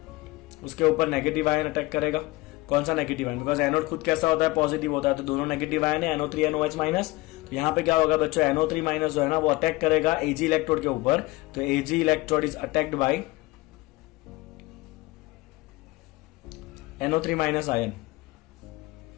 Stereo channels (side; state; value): right; quieter; 21.3 dB